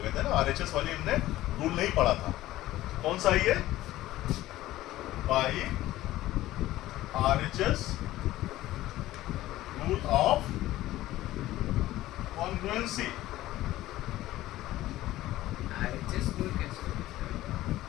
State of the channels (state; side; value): quieter; right; 15.7 dB